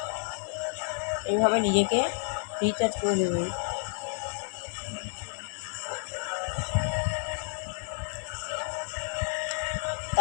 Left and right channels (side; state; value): right; silent; 58 dB below the other